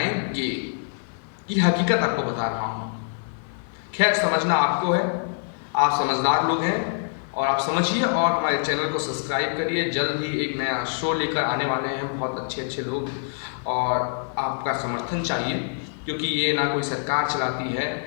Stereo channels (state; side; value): silent; right; 56 dB below the other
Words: ये हकीकत आपको बता रहा हूँ। खैर, समझना आपको है, आप समझदार लोग हैं और आप समझिए और हमारे चैनल को सब्सक्राइब करिए। जल्द ही एक नया शो लेकर आने वाले हैं, बहुत अच्छे अच्छे लोग, और आपका समर्थन चाहिए, क्योंकि ये ना कोई सरकार चलाती है